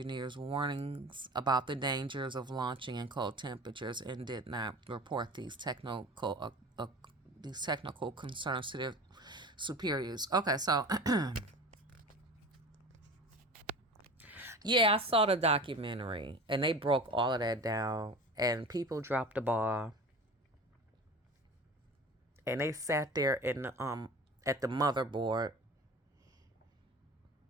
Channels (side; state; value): both; normal; correlation 0.36